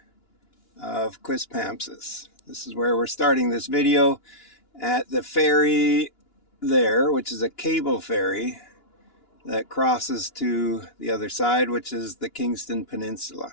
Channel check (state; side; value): late; right; 2.9 ms